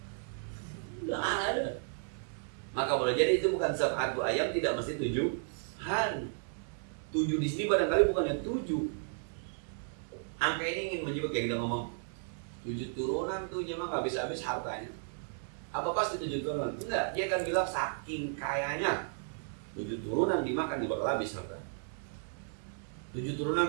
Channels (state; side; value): silent; left; digital silence